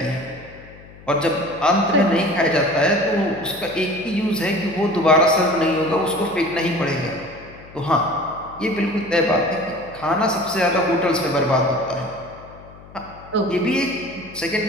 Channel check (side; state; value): left; noise; hum, 20 dB below the sound